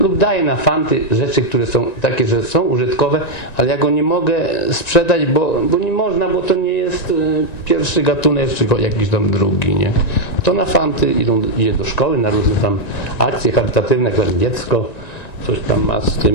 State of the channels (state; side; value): late; right; 1.9 ms